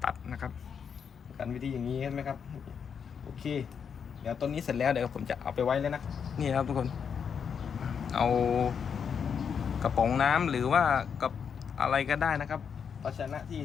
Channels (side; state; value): right; quieter; 6.9 dB